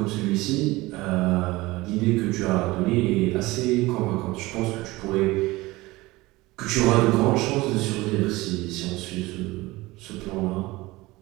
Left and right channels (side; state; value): left; quieter; 20.4 dB